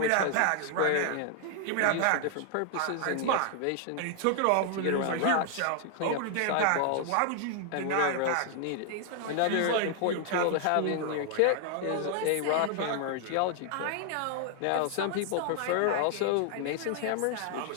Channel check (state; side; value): different; both; correlation 0.00